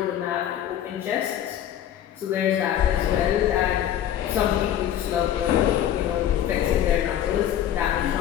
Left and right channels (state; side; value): quieter; right; 10.9 dB